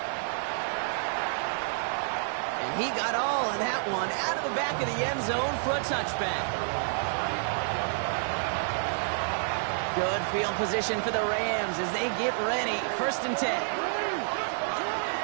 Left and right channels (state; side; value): silent; left; digital silence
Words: And he got all of that one out of the back of the end zone for a touchback. Good field position for the Rams as they get ready. 1st and 10.